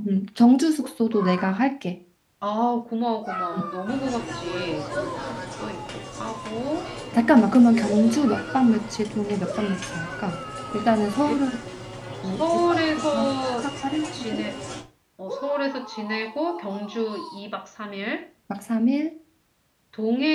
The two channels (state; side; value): identical; both; correlation 1.00